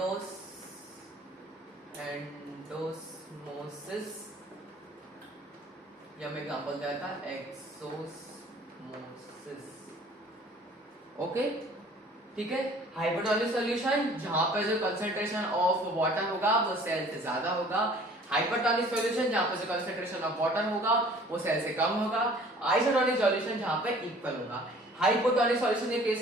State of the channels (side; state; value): both; normal; correlation 0.51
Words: या मैं एग्जांपल दिया था एक्सोस्मोसिस। ओके, ठीक है, हाइपरटोनिक सॉल्यूशन जहां पर जो कंसंट्रेशन ऑफ वाटर होगा वो सेल से ज्यादा होगा, हाइपरटोनिक सॉल्यूशन जहां पर जो कंसंट्रेशन ऑफ वाटर होगा वो सेल से कम होगा, आइसोटोनिक सॉल्यूशन जहां पे इक्वल होगा। हाइपोटोनिक सॉल्यूशन के केस